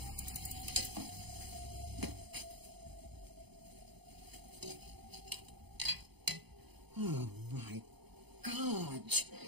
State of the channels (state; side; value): late; left; 0.98 ms